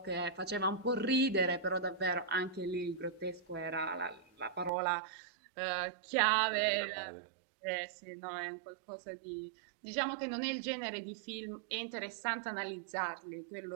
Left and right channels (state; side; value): drops out; left; at 4.7 s